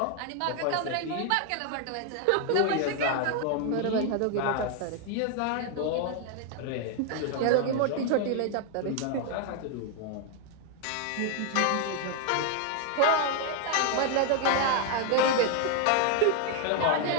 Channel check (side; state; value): both; different; correlation 0.00